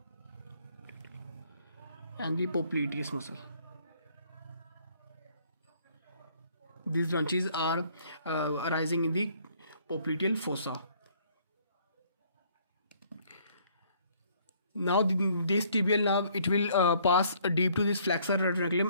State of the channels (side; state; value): both; inverted; correlation -0.62